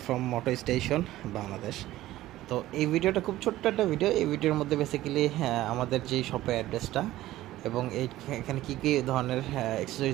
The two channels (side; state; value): left; quieter; 15.5 dB